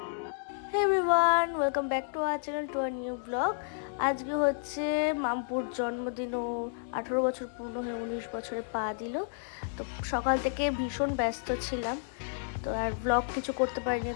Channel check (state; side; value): silent; right; digital silence